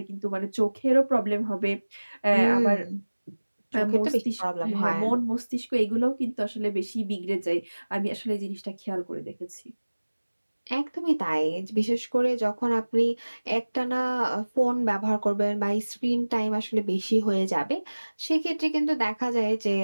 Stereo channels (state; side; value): inverted; both; correlation -1.00